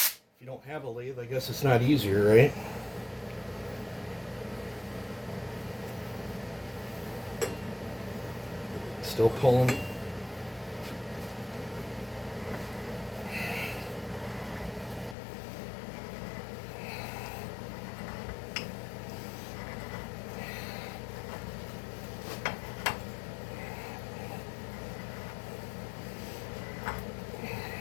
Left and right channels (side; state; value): right; drops out; at 15.2 s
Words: you don't have a lathe, I guess it's not easier, right? Still pulling.